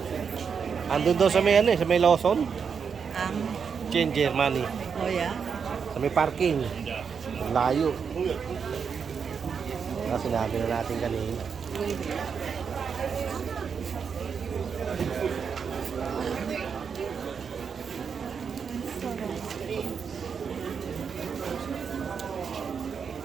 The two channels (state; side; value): quieter; left; 6.4 dB